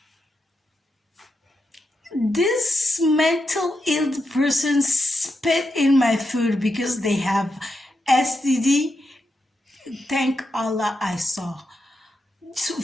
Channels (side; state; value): both; normal; correlation 0.85